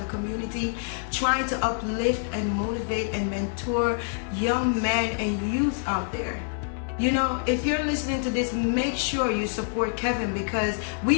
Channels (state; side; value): silent; right; digital silence